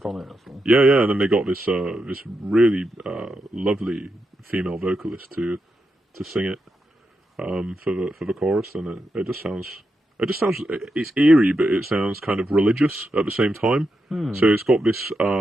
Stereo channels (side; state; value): both; normal; correlation 0.85